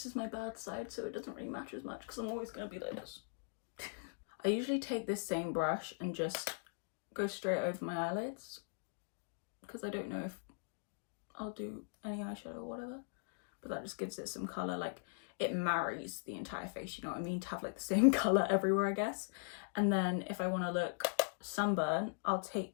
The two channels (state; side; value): silent; right; digital silence